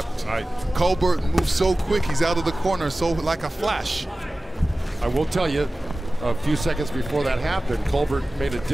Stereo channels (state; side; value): normal; both; correlation 0.97